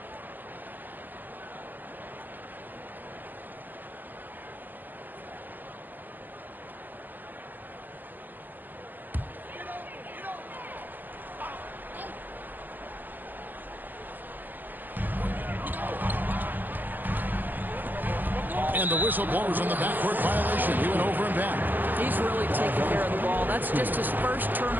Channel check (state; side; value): late; left; 0.088 ms